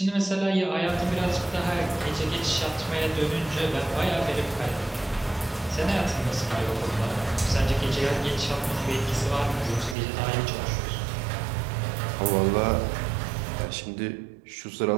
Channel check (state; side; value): drops out; left; at 10.0 s